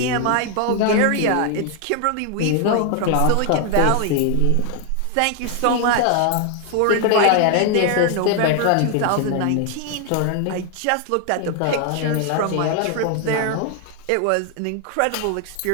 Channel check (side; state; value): both; different; correlation 0.00